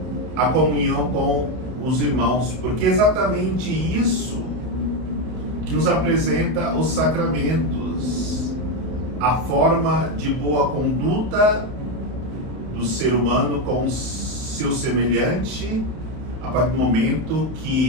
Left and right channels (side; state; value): left; late; 31 ms